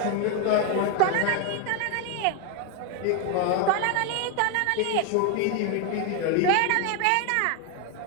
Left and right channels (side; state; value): both; different; correlation 0.01